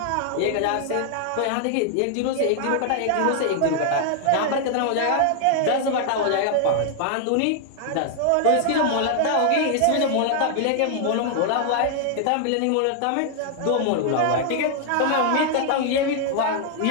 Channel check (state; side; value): different; both; correlation 0.00